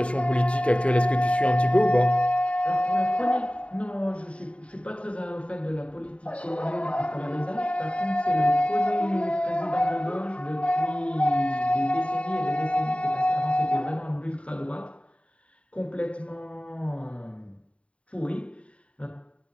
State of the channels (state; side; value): late; right; 0.061 ms